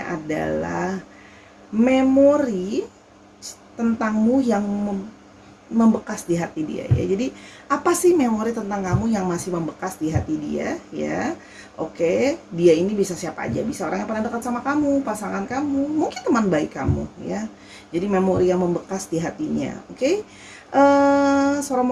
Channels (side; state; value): both; identical; correlation 1.00